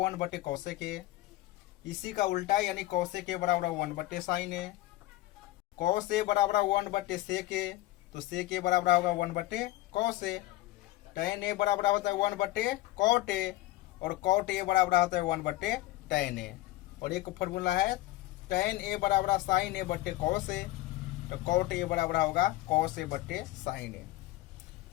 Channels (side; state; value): right; quieter; 17.3 dB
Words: ए, इसी का उल्टा यानी cosec ए बराबर 1/sin ए, cos ए बराबर 1/sec ए, तो sec ए बराबर होगा 1/cos ए, tan ए बराबर होता है 1/cot ए, और cot ए बराबर होता है 1/tan ए। और एक फॉर्मूला है tan ए बराबर sin ए बटे cos ए, तो cot ए बराबर होगा cos ए बटे sin ए।